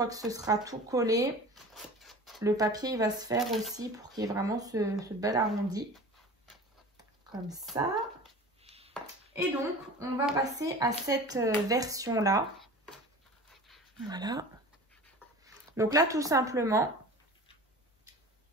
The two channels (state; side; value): normal; both; correlation 0.38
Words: que ce sera tout collé, le papier, il va se faire aussi pour qu'il y ait vraiment ce bel arrondi. Comme ça. Et donc, on va passer à cette version-là. Voilà. Donc là, tout simplement,